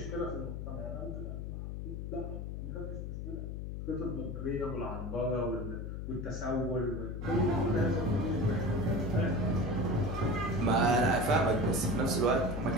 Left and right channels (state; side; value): noise; left; hum, 5 dB below the sound